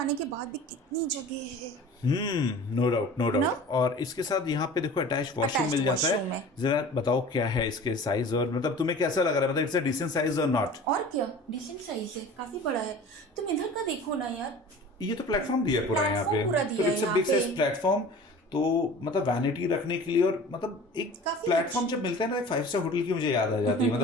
के बाद भी कितनी जगह है। नो डाउट नो ना? डाउट। और इसके साथ यहाँ पे देखो अटैच वॉशरूम Attached मिल जाता washroom है। है। जरा बताओ क्या है इसके साइज, और मतलब तुम्हें कैसा लग रहा है, मतलब इट्स अ डिसेंट साइज और नॉट? और क्या डिसेंट साइज है, काफी बड़ा है। तुम इधर का देखो ना यार, ये तो प्लेटफॉर्म दिया है पूरा यहाँ पे, प्लेटफॉर्म पूरा तो दिया है इट्स अ यहाँ बिग पे। Size platform. तो मतलब वैनिटी रखने के लिए, और मतलब एक काफी प्लेटफॉर्म जब मिलता है ना 5 स्टार होटल की मुझे याद आ जाती है।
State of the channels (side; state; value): both; normal; correlation 0.41